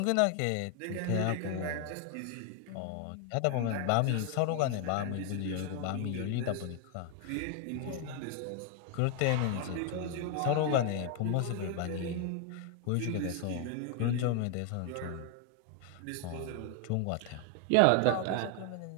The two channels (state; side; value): different; both; correlation 0.00